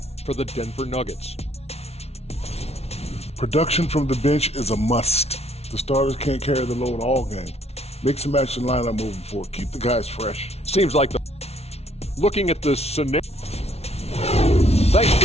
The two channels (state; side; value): late; right; 0.31 ms